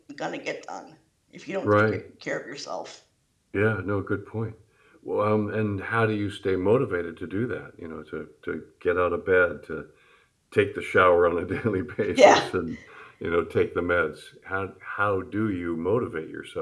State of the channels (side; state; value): both; identical; correlation 1.00